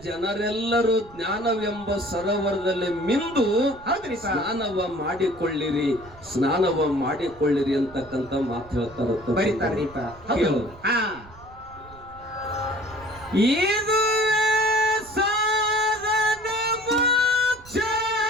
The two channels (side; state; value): right; noise; rumble, 22 dB below the sound